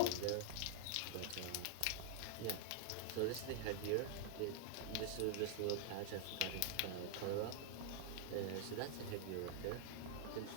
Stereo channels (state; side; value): different; both; correlation 0.00